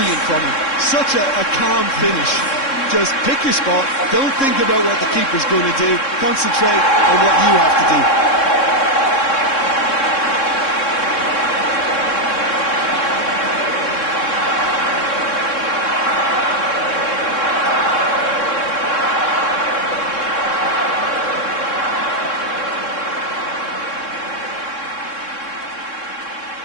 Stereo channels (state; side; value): late; right; 3.6 ms